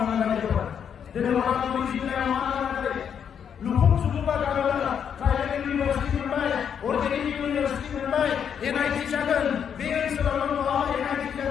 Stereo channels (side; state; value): right; quieter; 7.9 dB